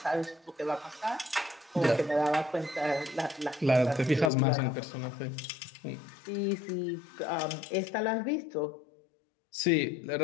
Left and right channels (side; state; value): right; drops out; at 4.3 s